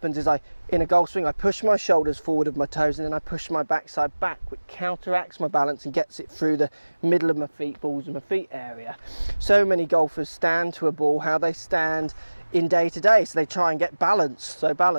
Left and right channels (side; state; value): both; inverted; correlation -1.00